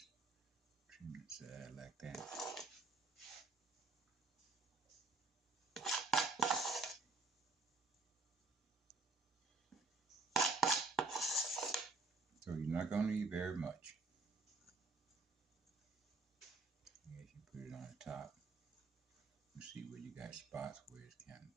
trim the side like that. So you're not going to need very much. As you put it on the top, you see where you got spots where it's kind of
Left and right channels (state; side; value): quieter; left; 3.7 dB